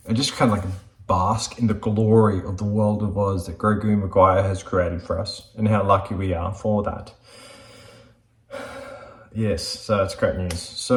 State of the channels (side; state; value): both; identical; correlation 1.00